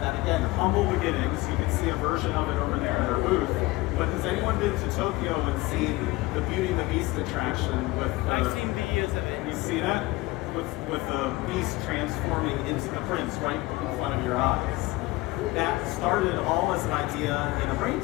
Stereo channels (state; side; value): quieter; right; 20.4 dB